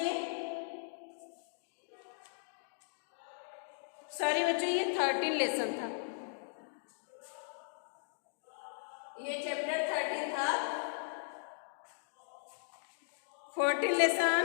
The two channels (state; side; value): silent; right; digital silence